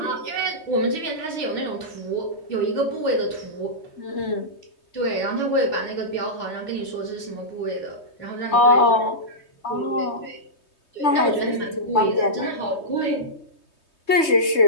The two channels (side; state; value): right; late; 3.2 ms